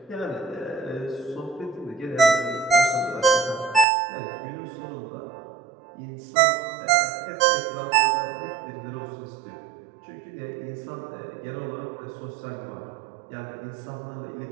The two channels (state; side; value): drops out; left; at 3.9 s